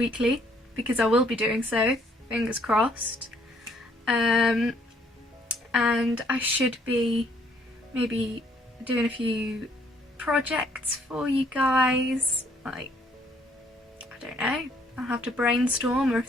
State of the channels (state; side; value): normal; both; correlation 0.65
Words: because I will be doing so, fingers crossed. And I should be maybe doing a few projects for you guys, like, I don't know, I'll have to brainstorm, or